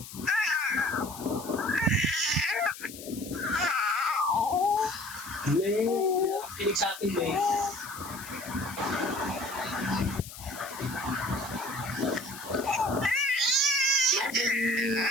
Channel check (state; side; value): noise; left; hiss, 14 dB below the sound